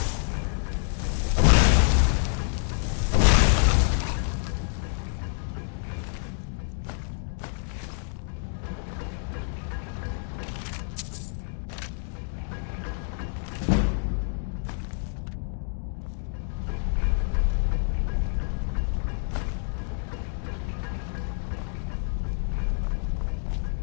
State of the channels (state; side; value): silent; right; 60 dB below the other